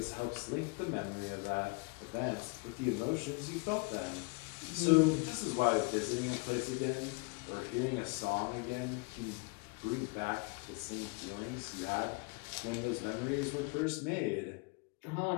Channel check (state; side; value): quieter; right; 30.4 dB